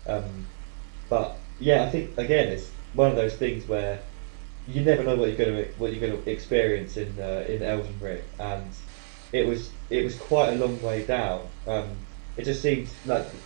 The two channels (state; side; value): silent; left; 60 dB below the other